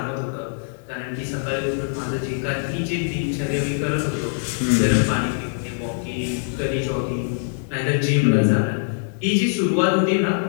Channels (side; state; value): right; silent; digital silence